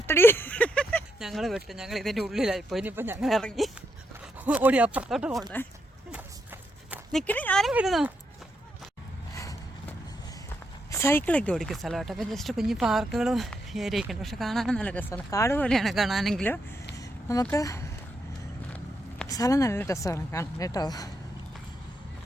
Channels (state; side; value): normal; both; correlation 0.81